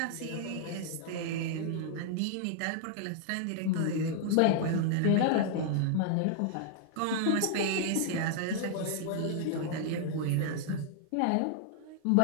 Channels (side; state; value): both; different; correlation 0.00